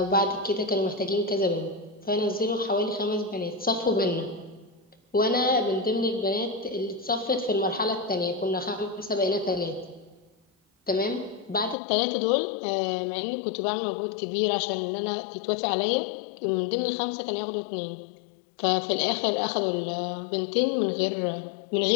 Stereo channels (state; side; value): drops out; right; at 11.8 s